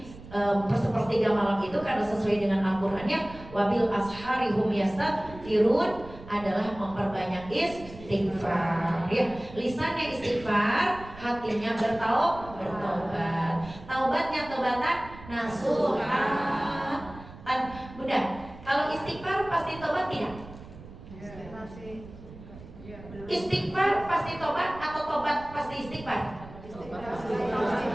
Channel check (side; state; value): right; noise; rumble, 17 dB below the sound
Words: sepertiga malam itu karena sesuai dengan Al-Qur'annya wabil ashari hum yastaghfirun adalah memperbanyak istighfar. Ya, lisannya istighfar, hatinya bertaubat. Taubatnya taubatan nasuha. Bunda, kalau istighfar pasti tobat tidak? Istighfar pasti tobat atau tobat pasti istighfar?